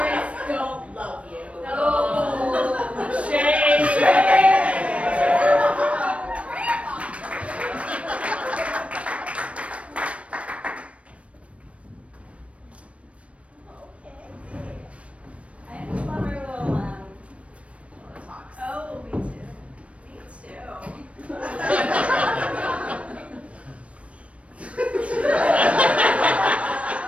don't love you. I just love our little talks. Oh, me too. Me too.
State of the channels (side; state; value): left; late; 0.063 ms